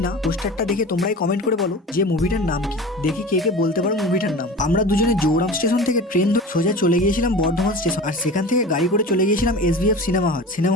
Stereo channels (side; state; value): both; normal; correlation 0.35